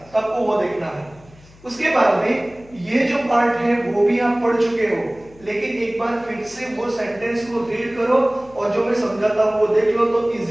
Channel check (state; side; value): noise; left; hum, 25 dB below the sound